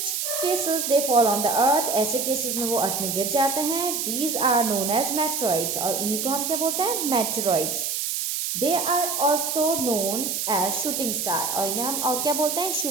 cases they fall on the earth, ऐसे केसेस में वो अर्थ में गिर जाते हैं। These are known as meteoroids, और इन्हीं को हम क्या बोलते हैं, meteoroids. They are also known as shooting star, और इन्हें हम और क्या बोलते हैं,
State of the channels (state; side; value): noise; right; hiss, 1 dB below the sound